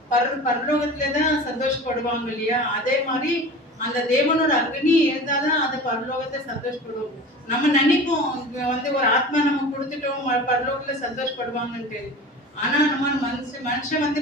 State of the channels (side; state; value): both; normal; correlation 0.36